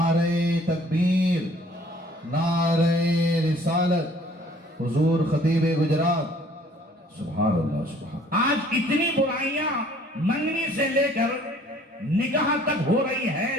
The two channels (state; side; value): normal; both; correlation 0.56